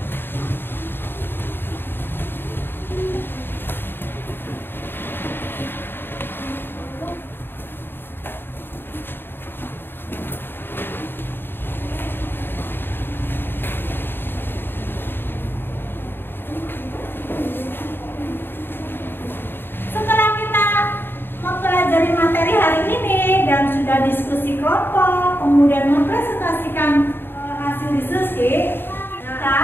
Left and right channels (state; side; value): late; right; 0.10 ms